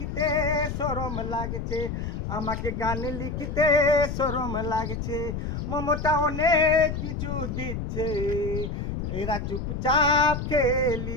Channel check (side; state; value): left; noise; rumble, 4 dB below the sound